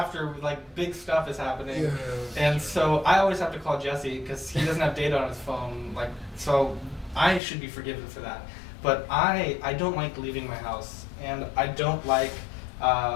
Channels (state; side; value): drops out; right; at 7.4 s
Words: like, big stuff is happening. Yeah. And so I always have to call Jesse because he doesn't have data on his phone. Like, so I should be forgiven for that. But I don't like leaving my house, and I don't like